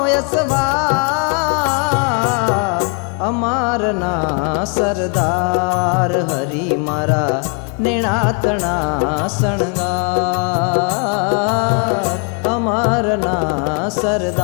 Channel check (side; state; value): right; quieter; 36.6 dB